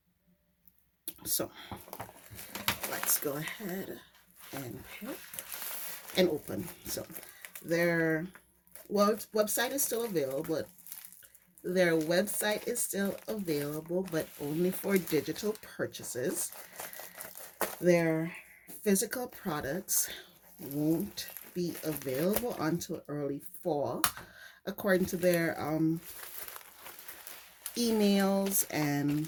So let's go ahead and pick and open. So their website is still available, but their website is still available, but only for digital purchases. Their physical products won't be available until early fall, according to their emails and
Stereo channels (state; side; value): identical; both; correlation 1.00